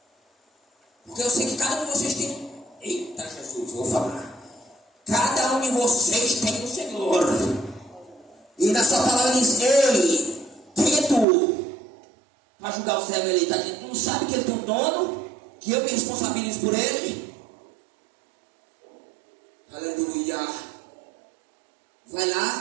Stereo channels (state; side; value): drops out; left; at 11.2 s